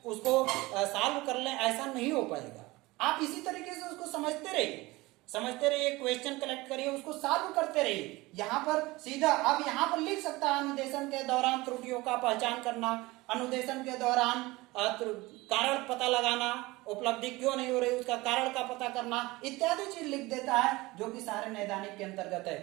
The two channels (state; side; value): quieter; left; 21.1 dB